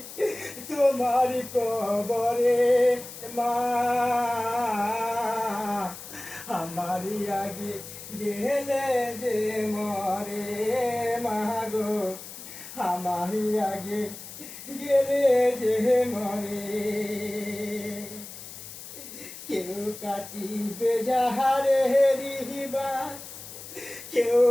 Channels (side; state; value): left; noise; hiss, 13 dB below the sound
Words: তোমার কবরে। মা আমারি আগে গেলে যে মরে, মাগো আমারি আগে গেলে যে মরে। কেউ কাটিবে যাহারে রিবাস, কেউ